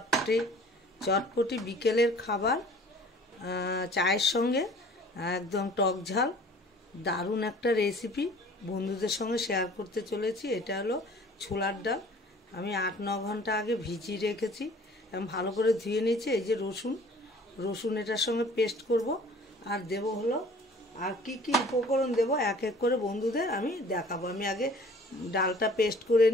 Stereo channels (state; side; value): normal; both; correlation 0.50